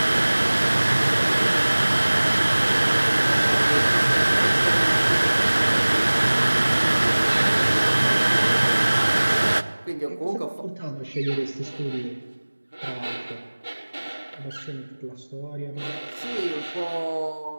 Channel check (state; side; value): inverted; both; correlation -1.00